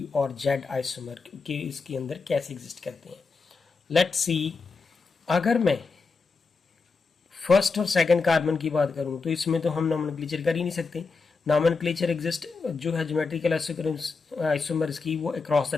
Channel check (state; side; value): quieter; right; 4.5 dB